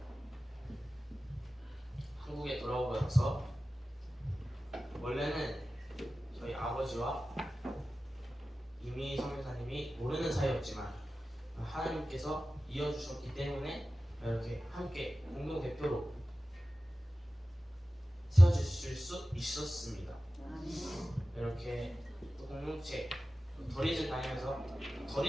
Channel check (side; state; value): both; normal; correlation 0.95